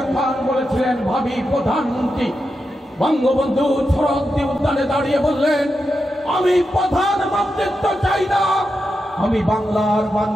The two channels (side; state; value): both; normal; correlation 0.88